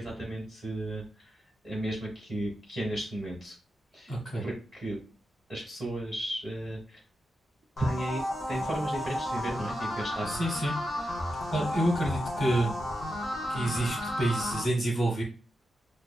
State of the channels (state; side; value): normal; both; correlation 0.88